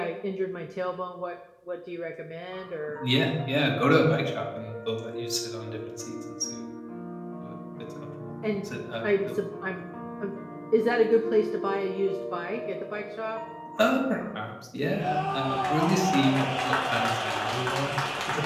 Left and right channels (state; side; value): identical; both; correlation 1.00